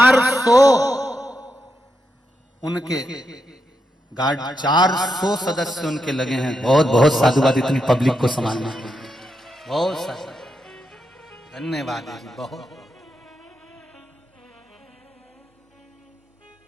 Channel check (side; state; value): both; normal; correlation 0.84